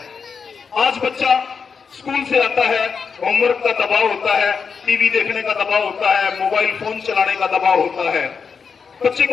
आज बच्चा स्कूल से आता है, होमवर्क का दबाव होता है, टीवी देखने का दबाव होता है, मोबाइल फोन चलाने का दबाव होता है। बच्चे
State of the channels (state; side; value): quieter; right; 5.7 dB